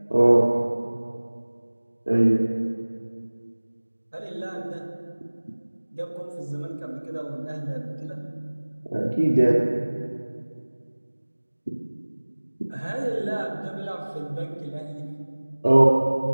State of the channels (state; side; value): inverted; both; correlation -1.00